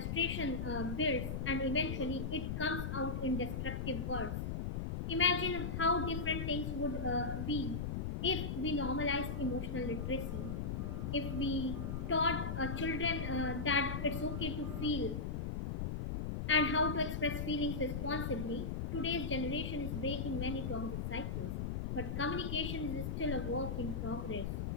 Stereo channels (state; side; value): noise; left; rumble, 2 dB below the sound